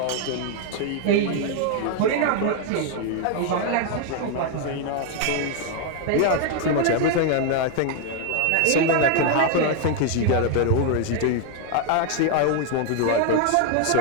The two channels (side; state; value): both; different; correlation 0.00